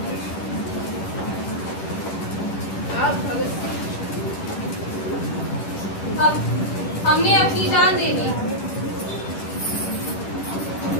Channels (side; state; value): right; late; 10 ms